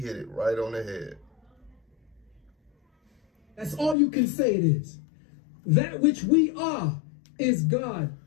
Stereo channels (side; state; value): right; drops out; at 4.0 s